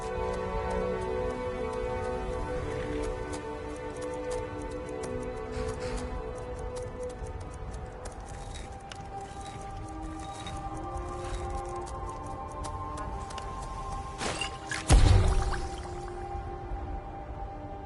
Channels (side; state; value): both; identical; correlation 1.00